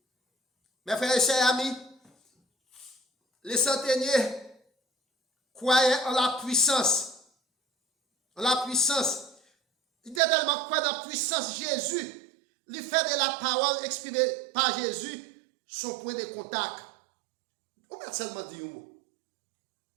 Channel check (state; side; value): drops out; left; at 10.2 s